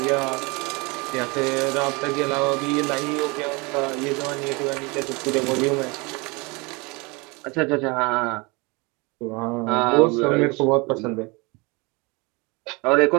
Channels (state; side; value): quieter; left; 27.2 dB